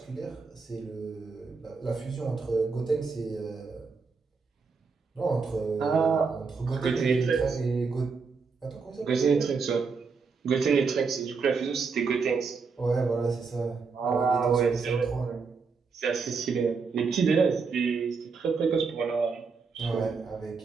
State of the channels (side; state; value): left; quieter; 5.0 dB